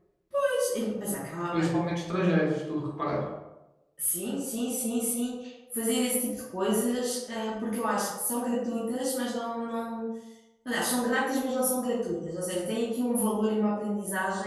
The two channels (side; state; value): both; identical; correlation 1.00